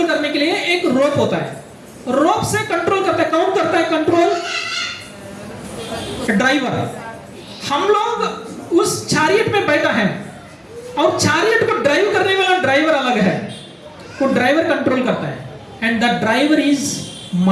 करने के लिए एक रोप होता है। रोप से कंट्रोल करता है, कौन करता है कंट्रोल? ड्राइवर। हम लोग उस चैरियट में बैठा है, और चैरियट को ड्राइव करने वाला ड्राइवर अलग है, वो ड्राइवर कंट्रोल करता है, and the driver is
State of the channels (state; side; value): identical; both; correlation 1.00